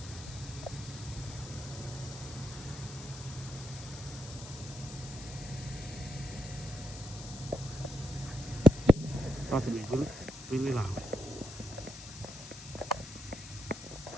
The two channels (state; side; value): noise; left; hiss, 13 dB below the sound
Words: About to be really, really loud.